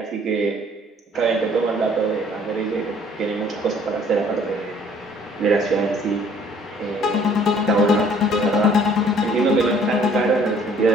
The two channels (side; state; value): both; normal; correlation 0.57